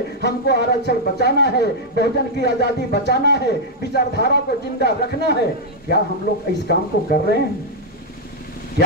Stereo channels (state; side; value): normal; both; correlation -0.03